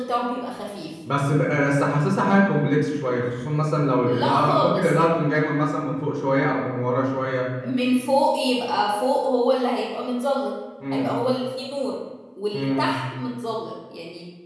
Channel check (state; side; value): identical; both; correlation 1.00